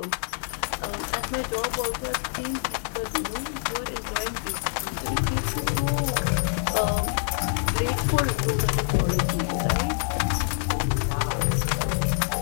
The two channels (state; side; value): silent; right; digital silence